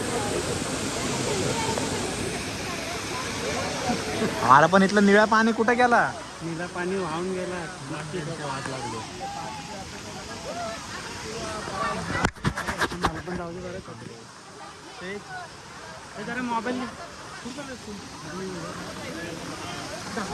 आम्हाला पण इथलं निळा पाणी कुठं गेला. नीला पाणी वाहून गेला. पण जाऊ दे बरं कपडे. ते जरा मोबाईल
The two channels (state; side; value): identical; both; correlation 1.00